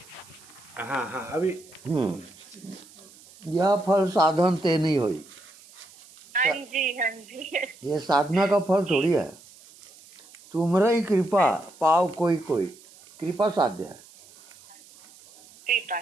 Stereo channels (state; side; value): noise; right; hiss, 23 dB below the sound